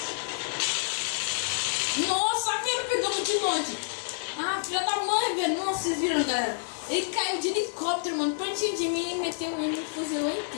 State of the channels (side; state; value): right; silent; 59 dB below the other